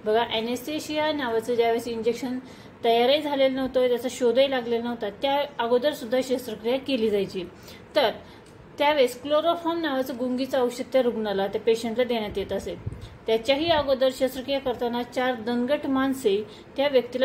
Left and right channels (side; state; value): both; identical; correlation 1.00